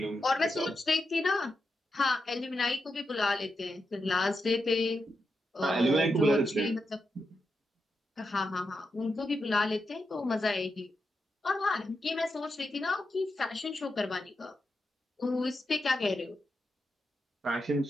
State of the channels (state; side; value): normal; both; correlation 0.86